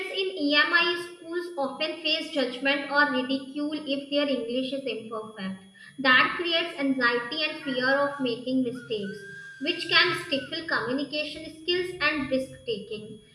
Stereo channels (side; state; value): both; identical; correlation 1.00